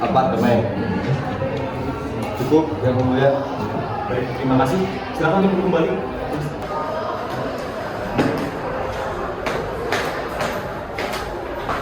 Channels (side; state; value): both; identical; correlation 1.00